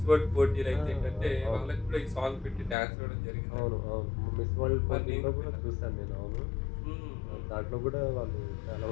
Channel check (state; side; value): drops out; right; at 2.8 s